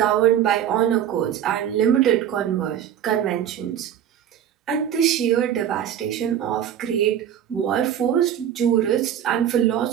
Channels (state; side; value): quieter; left; 9.9 dB